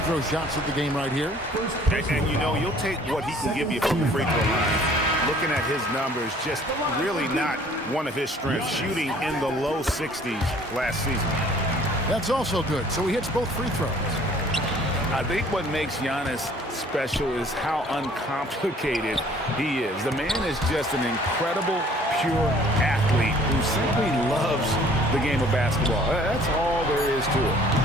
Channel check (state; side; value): normal; both; correlation 0.55